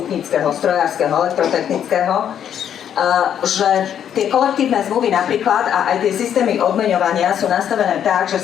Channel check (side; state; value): right; quieter; 9.3 dB